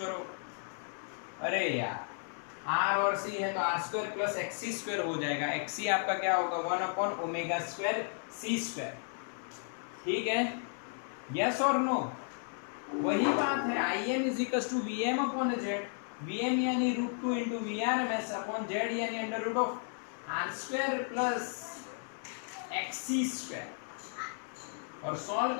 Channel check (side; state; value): right; silent; 55 dB below the other